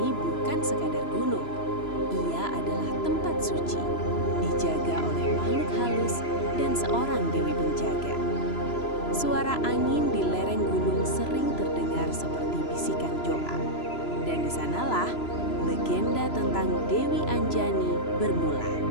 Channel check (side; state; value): right; late; 3.0 ms